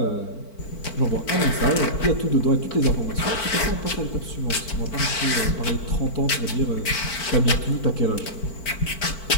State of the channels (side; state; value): right; late; 4.5 ms